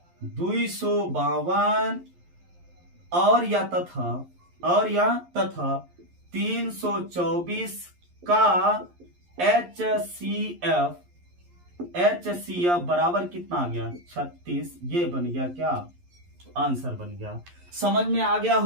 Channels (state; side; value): late; left; 11 ms